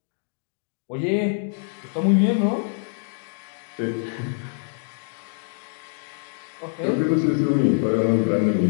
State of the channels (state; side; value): silent; right; 62 dB below the other